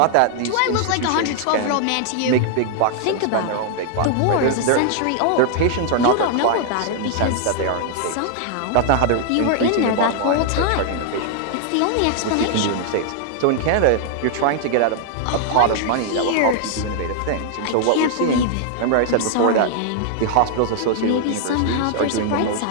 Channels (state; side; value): different; both; correlation 0.00